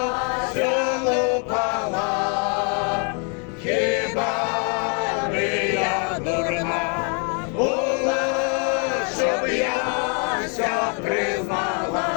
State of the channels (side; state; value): right; quieter; 38.8 dB